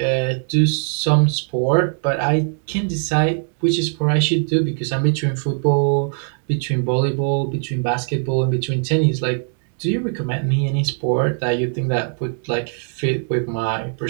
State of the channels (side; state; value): left; silent; 57 dB below the other